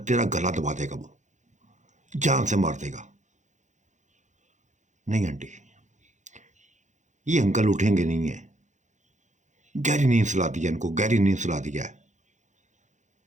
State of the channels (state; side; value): late; left; 0.35 ms